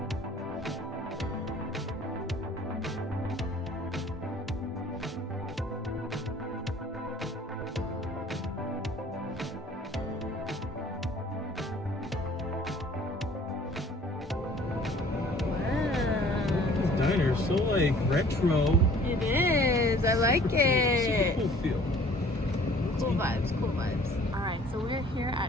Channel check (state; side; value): normal; both; correlation 0.52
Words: Diner, so like retro. It is. I like it. Super cool feel. Cool vibes. Cool vibes. All right, so we're here at